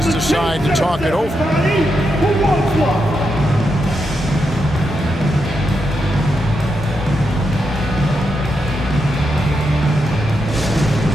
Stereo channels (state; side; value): normal; both; correlation 0.84